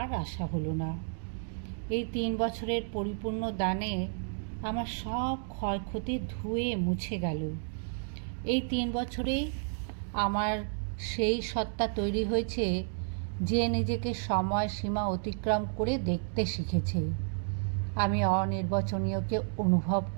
আসা হলো না। এই 3 বছরের পরিপূর্ণ দানে আমার সব ক্ষয়ক্ষতি ধুয়ে মুছে গেল। এই 3 বছরেই আমার সেই সত্তা তৈরি হয়েছে যে নিজেকে সময় সীমা অতিক্রম করে দেখতে শিখেছে। আমি অনির্বচনীয়কে অনুভব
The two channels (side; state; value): left; silent; digital silence